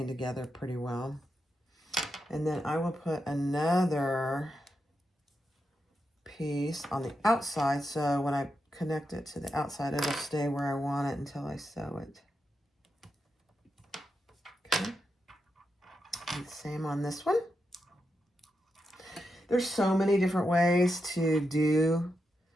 together pretty well. And then I will put another piece on the outside, so when I connect it to the outside, it'll stay where I want it until I sew it. Okay. And same on this one. There's so many different ways to do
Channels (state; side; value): normal; both; correlation 0.86